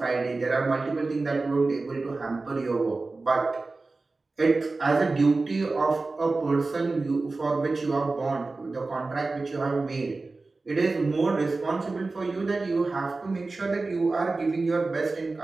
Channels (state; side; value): quieter; left; 3.6 dB